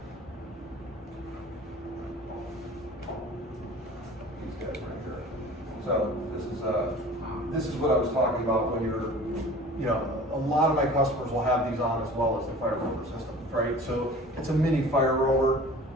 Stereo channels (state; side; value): normal; both; correlation 0.43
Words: These guys right here. So this is what I was talking about when you're, you know, a lot of my customers will have these on as well as the fire rover system, right? So it's a mini fire rover.